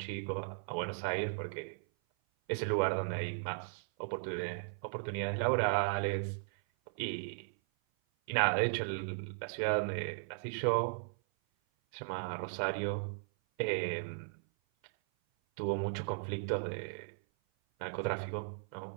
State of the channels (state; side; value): silent; left; 53 dB below the other